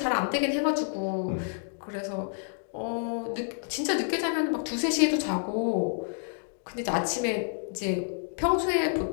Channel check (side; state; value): right; silent; digital silence